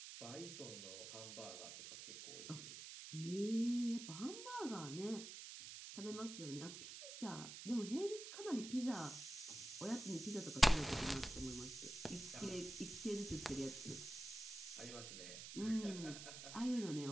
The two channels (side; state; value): right; noise; hiss, 9 dB below the sound